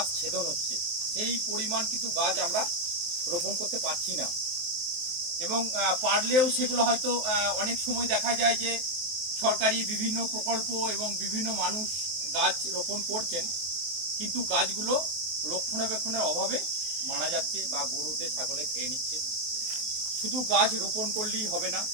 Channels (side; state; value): left; late; 23 ms